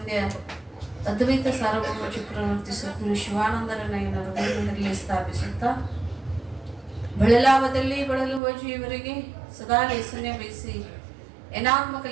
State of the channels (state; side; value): drops out; left; at 8.4 s